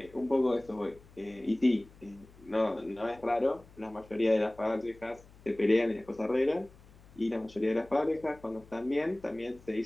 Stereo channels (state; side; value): noise; left; hum, 24 dB below the sound